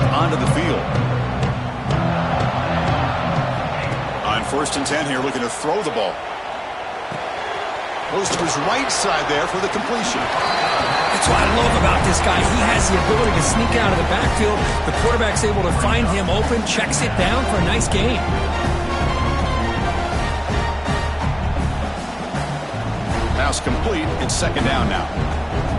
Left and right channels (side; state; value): both; identical; correlation 1.00